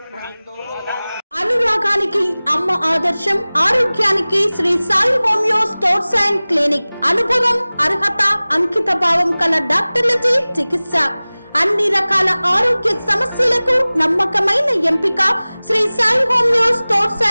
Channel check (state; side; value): inverted; both; correlation -0.99